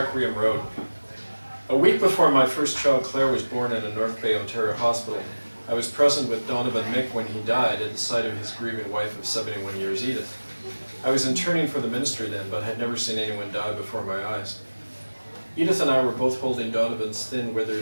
Road. A week before my first child, Claire, was born in a North Bay, Ontario hospital, I was present with Donovan Mick when he died at the side of his grieving wife of 71 years, Edith. I was interning for the ministry then, but had never seen anyone die before my eyes. Edith and I were both holding Donovan's thin,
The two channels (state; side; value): inverted; both; correlation -1.00